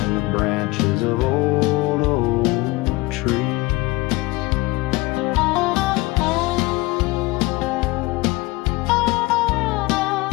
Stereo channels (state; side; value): quieter; right; 21.8 dB